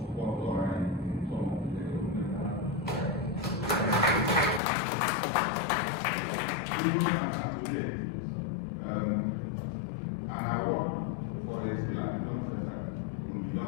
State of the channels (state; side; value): drops out; right; at 4.6 s